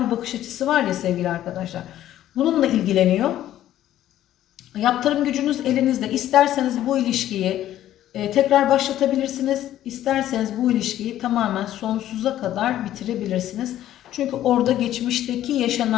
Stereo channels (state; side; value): quieter; right; 12.7 dB